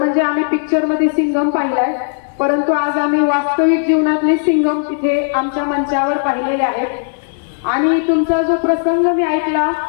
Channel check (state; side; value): silent; right; 65 dB below the other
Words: आम्ही पिक्चर मध्ये सिंघम पाहिलाय, परंतु आज आम्ही वास्तविक जीवनातले सिंघम तिथे आमच्या मंचावर पाहिलेले आहेत. आणि तुमचा जो प्रसंग मी ऐकला